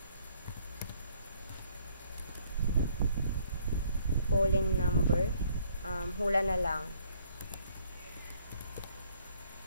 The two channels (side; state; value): both; inverted; correlation -0.65